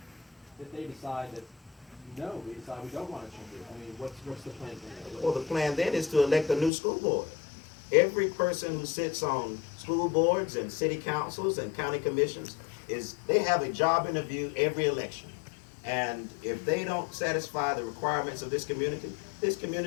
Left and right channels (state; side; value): drops out; right; at 6.7 s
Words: if they decide that no, we decide we don't want to change it. I mean, what's the plan from there? Well, the plan then is to elect a new school board. Every person who sits on school boards and city councils and county commissions they have a job interview every election. And if they don't satisfy the requirements of this